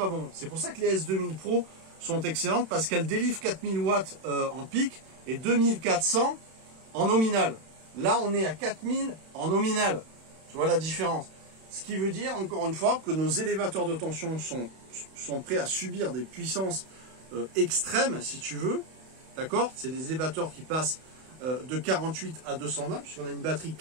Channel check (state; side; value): late; left; 31 ms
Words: bon. C'est pour ça que les S2000 Pro sont excellentes parce qu'elles délivrent 4000 watts en pic et 2400 en nominal. Là, on est à 4000 en nominal. Tu vois la différence? Ce qui veut dire, encore une fois, que nos élévateurs de tension sont prêts à subir des puissances extrêmes, si tu veux. D'accord? C'est des élévateurs qui passent de 48 à 220, puisqu'on a une batterie